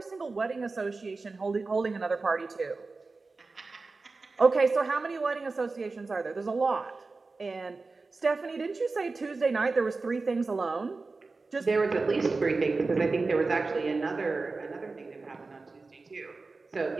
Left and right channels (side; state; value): left; quieter; 3.8 dB